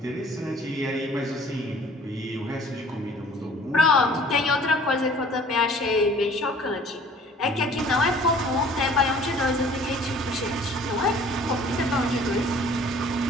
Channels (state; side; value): normal; both; correlation 0.52